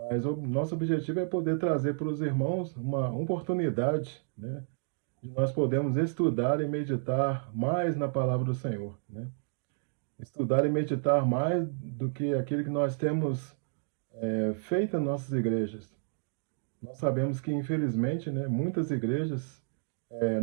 o nosso objetivo é poder trazer para os irmãos uma oportunidade, né, de nós podermos estudar e meditar mais na palavra do Senhor, né? Estudar e meditar mais do que aquilo que nós temos feito em nossas igrejas. Nós sabemos que, infelizmente, né, muitas igrejas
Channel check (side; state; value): left; silent; digital silence